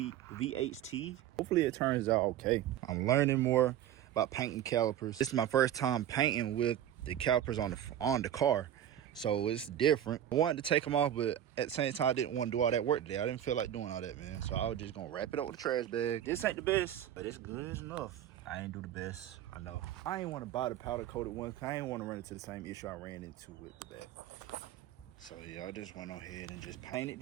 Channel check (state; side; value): quieter; left; 11.0 dB